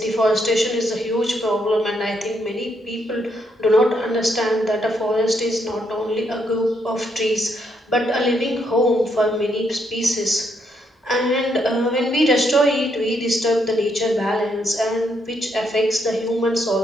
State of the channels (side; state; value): both; normal; correlation 0.76